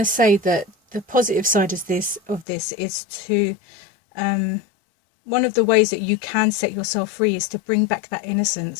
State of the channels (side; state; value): right; drops out; at 2.5 s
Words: say that the positive side of this is to, one of the ways that you can set yourself free is to bring back that